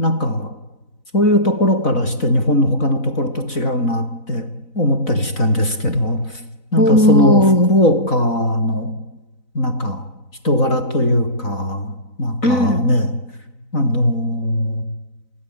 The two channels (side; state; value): right; late; 4.0 ms